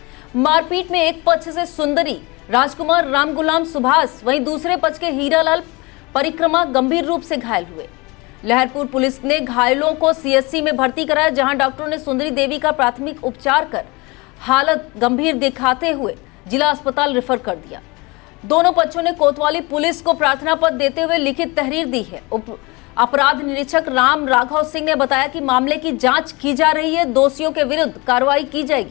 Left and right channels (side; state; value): right; quieter; 25.5 dB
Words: मारपीट में एक पक्ष से सुंदरी, राजकुमार, राम गुलाम, सुभाष, वहीं दूसरे पक्ष के हीरालाल परिक्रमा गंभीर रूप से घायल हुए। लहरपुर पुलिस ने घायलों को सीएचसी में भर्ती कराया, जहां डॉक्टरों ने सुंदरी देवी का प्राथमिक उपचार कर हालत गंभीर दिखाते हुए जिला अस्पताल रेफर कर दिया। दोनों पक्षों ने कोतवाली पुलिस को प्रार्थना पत्र देते हुए लिखित तहरीर दी है। अपराध निरीक्षक राम राघव सिंह ने बताया कि मामले की जांच की जा रही है, दोषियों के विरुद्ध कार्रवाई की